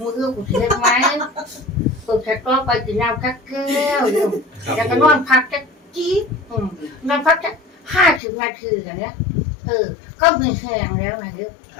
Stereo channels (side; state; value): right; drops out; at 8.2 s